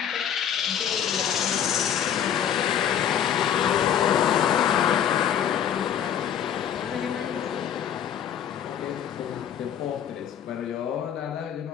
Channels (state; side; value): quieter; right; 9.2 dB